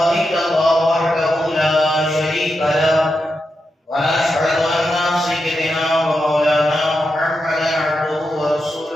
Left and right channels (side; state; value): both; normal; correlation 0.87